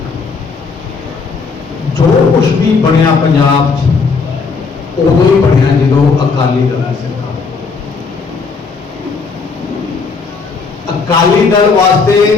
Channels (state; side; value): quieter; right; 4.7 dB